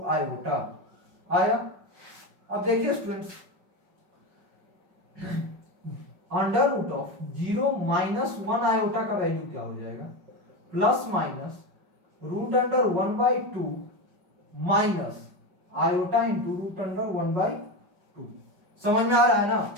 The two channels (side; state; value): left; late; 5.3 ms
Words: आयोटा आया। अब देखिए students, under root of 0 - 1 iota का वैल्यू क्या हो जाएगा, plus minus root under 1/2 minus iota into root under 1/2। समझ में आ रहा है ना?